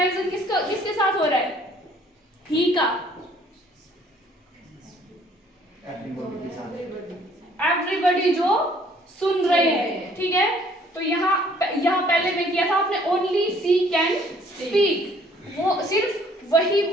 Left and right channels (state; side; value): normal; both; correlation 0.60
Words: किसके साथ हो रहा है? ही का। एवरीबॉडी जो सुन रहे हैं, ठीक है। तो यहाँ पहले में किया था आपने ओनली सी कैन स्पीक, वो सिर्फ वही